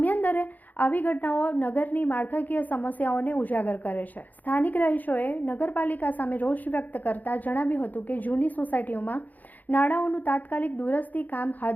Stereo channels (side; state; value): right; late; 0.082 ms